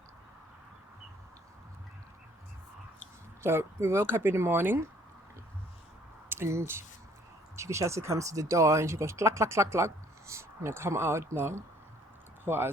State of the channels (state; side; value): normal; both; correlation 0.60